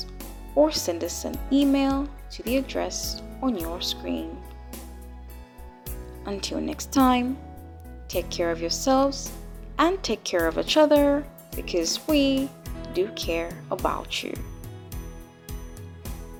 or send us an email to the address on your screen. Until next time, take care of yourselves and take care of each other, because we do care about you.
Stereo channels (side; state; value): both; identical; correlation 1.00